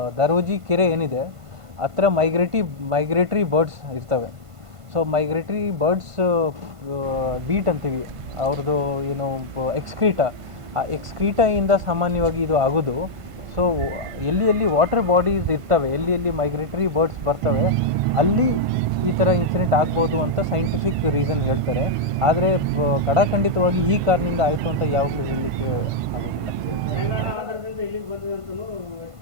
ದರೋಜಿ ಕೆರೆ ಏನಿದೆ ಹತ್ರ ಮೈಗ್ರೇಟ್ರಿ ಬರ್ಡ್ಸ್ ಇರ್ತವೆ. ಸೊ ಮೈಗ್ರೇಟ್ರಿ ಬರ್ಡ್ಸ್ ಬೀಟ್ ಅಂತೀವಿ, ಅವ್ರದ್ದು ಏನು ಎಕ್ಸ್ಕ್ರೀಟಾ, ಆ ಎಕ್ಸ್ಕ್ರೀಟಾಯಿಂದ ಸಾಮಾನ್ಯವಾಗಿ ಇದು ಆಗೋದು. ಸೊ ಎಲ್ಲಿ ವಾಟರ್ ಬಾಡೀಸ್ ಇರ್ತವೆ, ಎಲ್ಲಿ ಮೈಗ್ರೇಟರಿ ಬರ್ಡ್ಸ್ ಬರ್ತವೆ, ಅಲ್ಲಿ ಈ ಥರ ಇನ್ಸಿಡೆಂಟ್ ಆಗ್ಬೋದು ಅಂತ ಸೈಂಟಿಫಿಕ್ ರೀಸನ್ ಹೇಳ್ತಾರೆ. ಆದರೆ ಖಡಾಖಂಡಿತವಾಗಿ ಈ ಕಾರಣದಿಂದ ಆಯಿತು ಅಂತ ಯಾವಾಗಲೂ ಹೇಳಲಿಕ್ಕೆ ಆಗೋದಿಲ್ಲ.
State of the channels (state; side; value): late; left; 1.5 ms